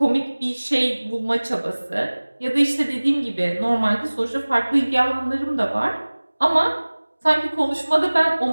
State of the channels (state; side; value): inverted; both; correlation -1.00